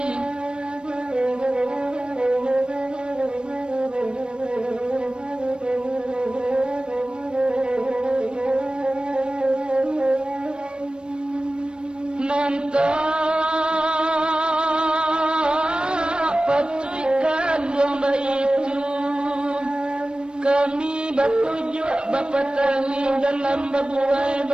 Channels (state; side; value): late; left; 0.053 ms